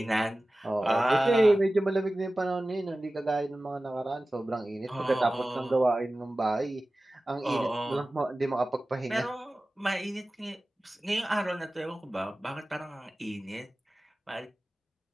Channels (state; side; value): normal; both; correlation 0.96